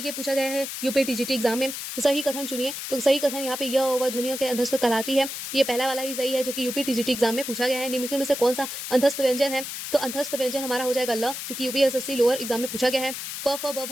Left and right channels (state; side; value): noise; left; hiss, 7 dB below the sound